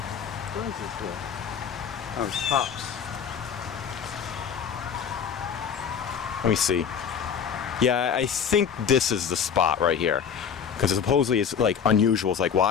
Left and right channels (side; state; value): right; quieter; 7.4 dB